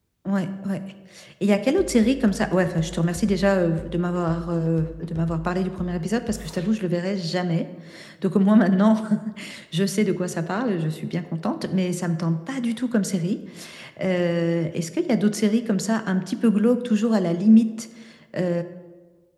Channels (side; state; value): both; identical; correlation 1.00